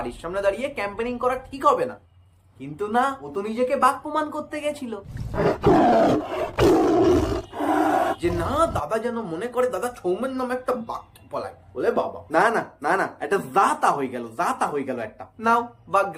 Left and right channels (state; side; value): identical; both; correlation 1.00